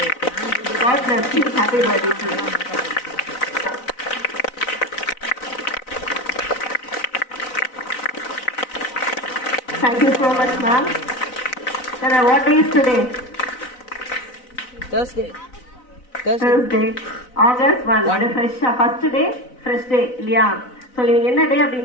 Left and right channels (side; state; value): right; late; 4.0 ms